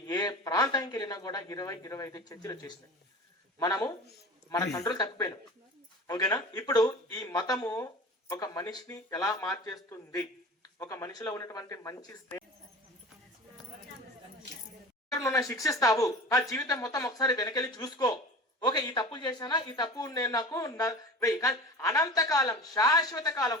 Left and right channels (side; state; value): both; normal; correlation 0.36